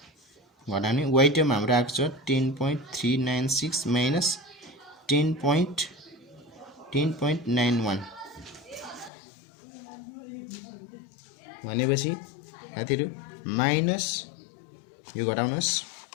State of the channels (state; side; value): drops out; right; at 9.1 s